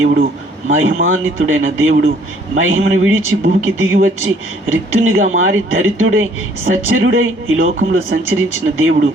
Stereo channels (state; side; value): normal; both; correlation 0.60